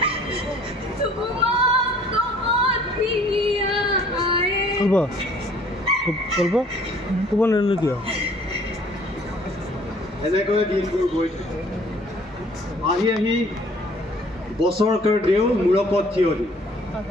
এনেকৈ দিনবোৰ গৈ থাকে। আহি আহি বছৰকৰ দেও মূৰকত থিয় দি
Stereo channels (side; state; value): both; normal; correlation 0.55